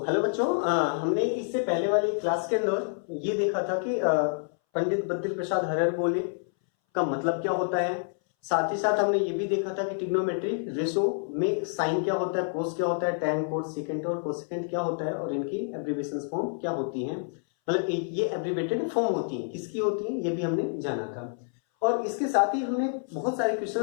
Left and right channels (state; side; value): silent; right; 59 dB below the other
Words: हेलो बच्चों, हमने इससे पहले वाली क्लास के अंदर ये देखा था कि पंडित बद्री प्रसाद हरिहरबोले का मतलब क्या होता है। साथ ही साथ हमने ये भी देखा था कि ट्रिग्नोमेट्री रेशो में साइन क्या होता है, कोस क्या होता है, टैन कोस सेकेंड और कोसेकेंट क्या होता है और इनकी एब्रिविएशन फॉर्म क्या होती है। मतलब ये एब्रिवेटेड फॉर्म होती है, किसकी होती है ये भी हमने जाना था। और इसके साथ ही हमने बहुत सारे